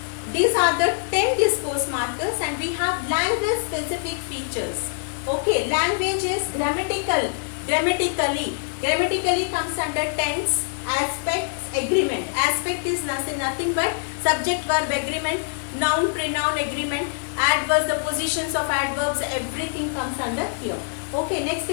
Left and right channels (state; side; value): silent; right; digital silence